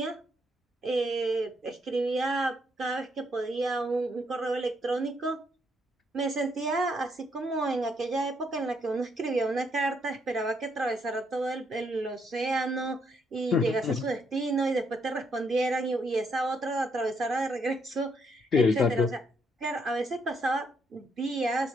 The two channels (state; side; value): normal; both; correlation 0.74